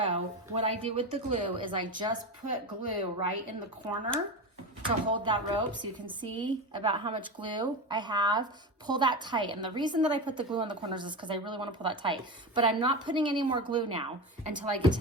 what I do with the glue is I just put glue right in the corner to hold that rope so you can see about how much glue I have. Pull that tight. And the reason that I put the glue on the corners is because I really want to pull that tight. But I'm not putting any more glue now until I get to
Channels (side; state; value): both; normal; correlation 0.22